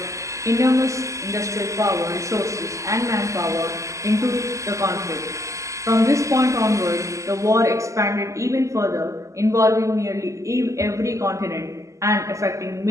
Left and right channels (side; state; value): left; late; 0.15 ms